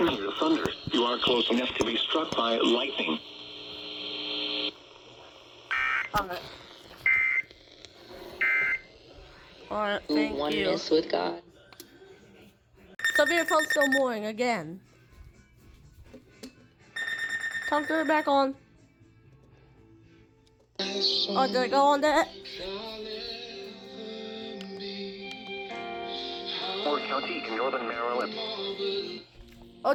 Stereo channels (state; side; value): identical; both; correlation 1.00